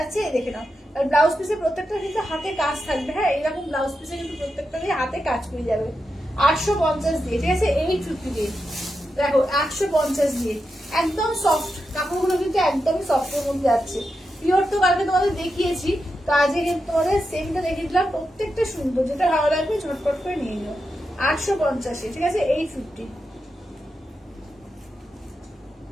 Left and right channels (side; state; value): both; normal; correlation 0.88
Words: এই দেখে নাও। আর ব্লাউজ পিসে প্রত্যেকটা কিন্তু হাতে কাজ থাকবে, হ্যাঁ, এইরকম ব্লাউজ পিসে কিন্তু প্রত্যেকটা হাতে কাজ করে যাবে। 850 দিয়ে, ঠিক আছে, 850 দিয়ে। দেখো 850 দিয়ে, একদম সফট কাপড়গুলো, কিন্তু একদমই সফটের মধ্যে যাচ্ছে। পিওর তো কালকে তোমাদের দেখিয়েছি, তো আজকে কিন্তু তোমাদের সেমটা দেখিয়ে দিলাম, প্রত্যেকটা সুন্দর, যেটা ভালো লাগবে ঝটপট করে নিয়ে নিও। 850, ঠিক আছে, 850।